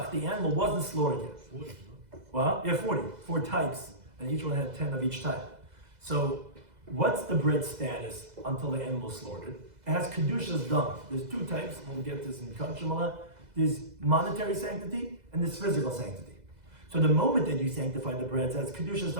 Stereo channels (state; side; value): late; left; 2.0 ms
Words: the animal wasn't slaughtered yet. 40, no? Well, yeah, 40. 4 types, and each one had 10 of each type. So, what's the bread status until the animal is slaughtered? It has kedushas dam. There's 2 types. We'll get this in Kachimala. There's monetary sanctity and there's physical sanctity. So the moment that you sanctify the breads, as kedushas